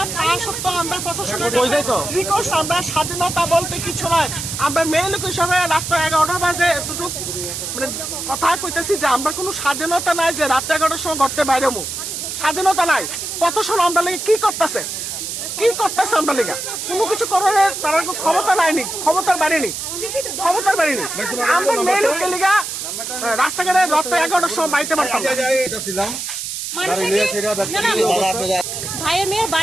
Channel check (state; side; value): noise; right; hiss, 5 dB below the sound